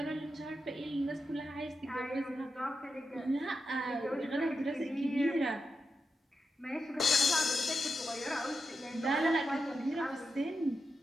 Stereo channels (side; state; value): both; normal; correlation 0.87